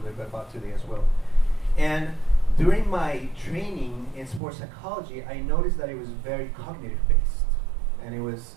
bit about today as well. And during my training in sports psychology, I noticed that it was very cognitive based, and it was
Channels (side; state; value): left; drops out; at 4.4 s